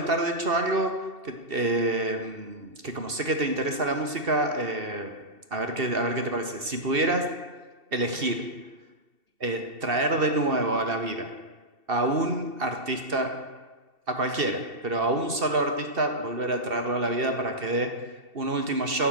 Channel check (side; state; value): left; late; 2.7 ms